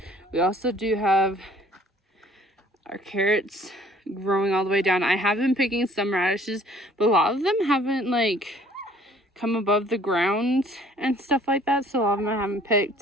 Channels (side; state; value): both; normal; correlation 0.55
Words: We also do have our carrots growing all the way down. I have been picking some radishes, but a lot of them haven't like come above the ground and stuff like that, so a lot of them I haven't